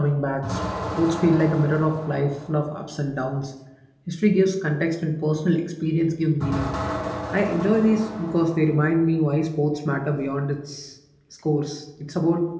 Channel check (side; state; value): both; identical; correlation 1.00